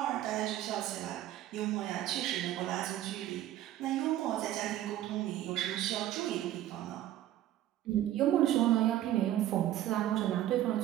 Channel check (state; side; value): quieter; left; 13.2 dB